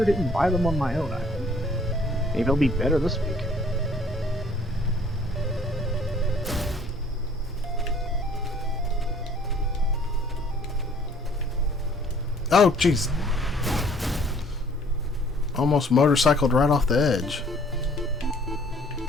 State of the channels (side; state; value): both; normal; correlation 0.58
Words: didn't buy them on my own island. Maybe it'll be better this week. Oh, jeez. Almost motorcycled right off the edge.